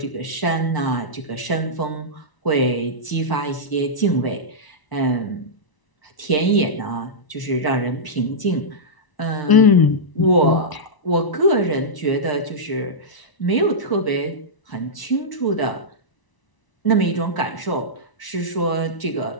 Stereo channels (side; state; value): right; late; 1.0 ms